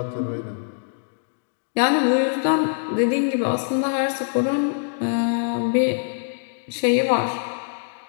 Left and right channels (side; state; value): right; silent; digital silence